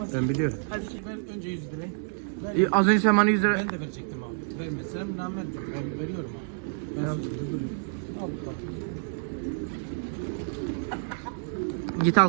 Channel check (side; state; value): left; silent; digital silence